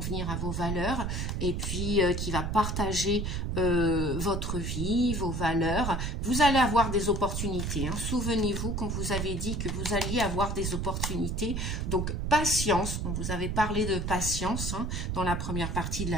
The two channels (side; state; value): right; noise; rumble, 2 dB below the sound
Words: à vos valeurs et puis qui va partager votre vie, vos valeurs. Vous allez avoir des opportunités. Hein. Souvenez-vous qu'on vous avait dit que vous alliez avoir des opportunités. Donc, patience. On vous avait parlé de patience hein, dans la première partie de